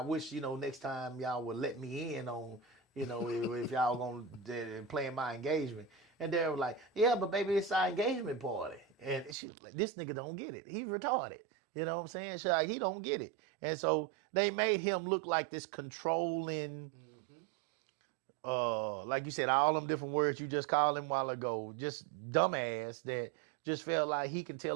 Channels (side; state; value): left; drops out; at 9.3 s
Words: wish, next time y'all would let me in on, if y'all going to play in my engagement. And Daryl was like, yeah, but baby, it's our engagement party. And she was like, this nigga don't get it. He's retarded. You know what I'm saying? She's like, he don't get it. And so they made him look like this controlling, like you said, all them different words you just called him a while ago, just dumbass that just felt like he can tell